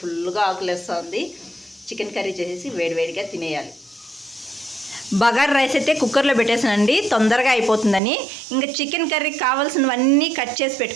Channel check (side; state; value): left; drops out; at 8.0 s